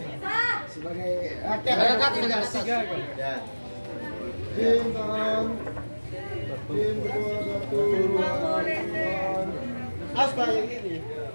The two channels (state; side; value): inverted; both; correlation -1.00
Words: Sebagai rakyat ya. Tim tangan. Tim kedua satu. Aspa yang ini.